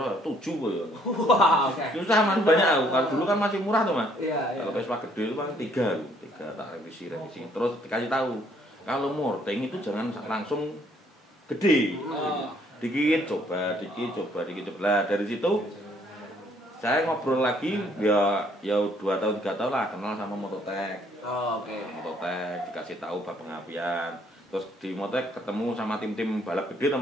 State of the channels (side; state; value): both; normal; correlation 0.65